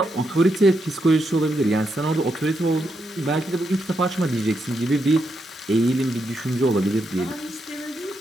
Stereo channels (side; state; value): both; normal; correlation 0.82